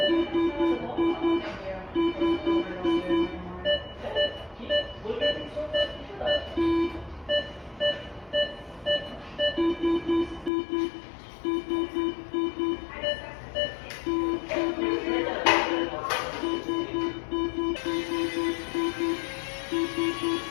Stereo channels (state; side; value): drops out; right; at 10.5 s